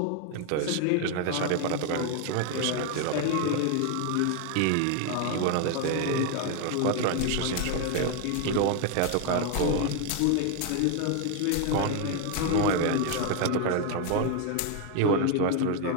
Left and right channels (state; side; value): different; both; correlation 0.01